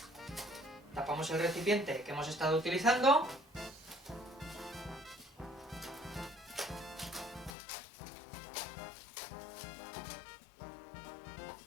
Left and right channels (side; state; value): right; drops out; at 7.5 s